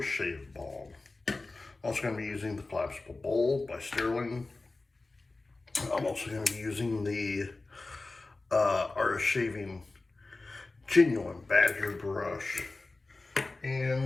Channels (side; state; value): right; quieter; 3.3 dB